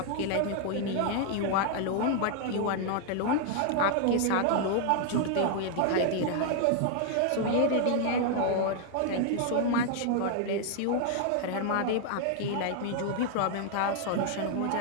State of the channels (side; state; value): both; different; correlation 0.00